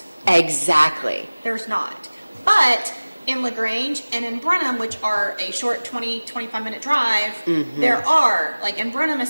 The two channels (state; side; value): inverted; both; correlation -1.00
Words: Exactly. There's not. But in LaGrange and in Brenham, which are a short 20-25 minute drive, there are, like in Brenham